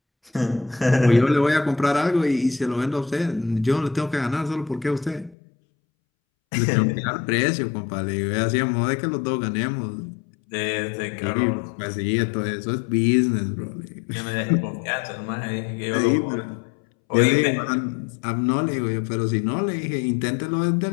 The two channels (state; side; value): drops out; right; at 5.4 s